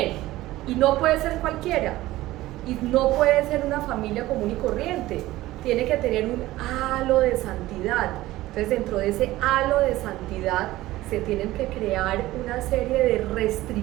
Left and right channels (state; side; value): quieter; left; 16.8 dB